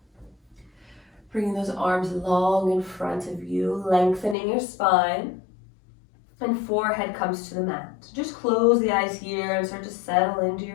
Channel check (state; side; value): drops out; right; at 4.4 s